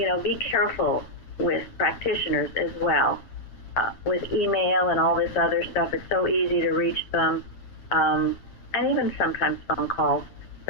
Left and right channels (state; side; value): late; right; 9.0 ms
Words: know, be careful with practitioners as well. With email and all this other stuff, it's so easy to reach them, and even sometimes phone calls.